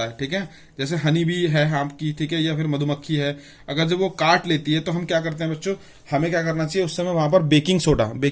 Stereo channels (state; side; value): identical; both; correlation 1.00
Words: है, ठीक है, जैसे हनी भी है आपकी, ठीक है, या फिर मधुमक्खी है, अगर जब वो काट लेती है तो हम क्या करते हैं बच्चों, हमें क्या करना चाहिए उस समय वहां पर बेकिंग